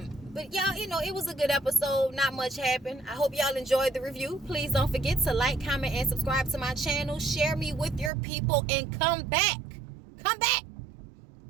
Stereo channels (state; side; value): drops out; left; at 8.1 s